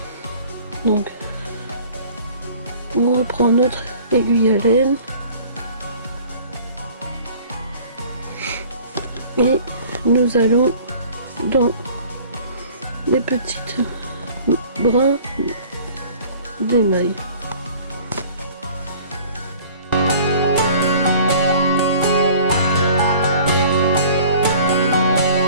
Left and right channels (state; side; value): inverted; both; correlation -0.49